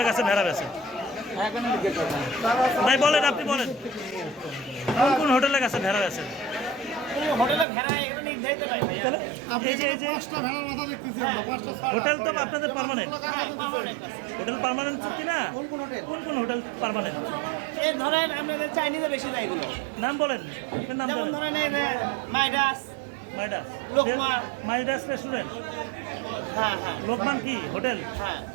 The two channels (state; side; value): drops out; left; at 7.7 s